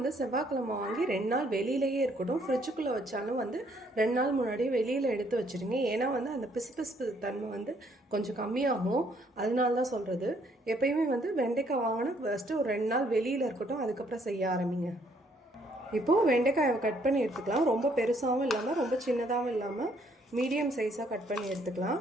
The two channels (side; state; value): both; normal; correlation 0.67